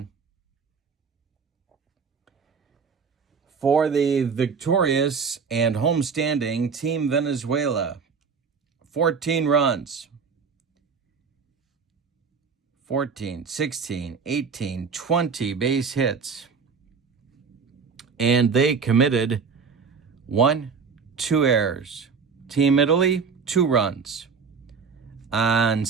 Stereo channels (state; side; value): quieter; left; 5.6 dB